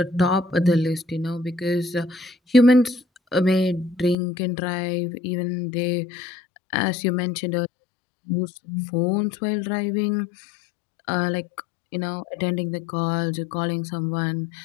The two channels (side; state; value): right; drops out; at 4.2 s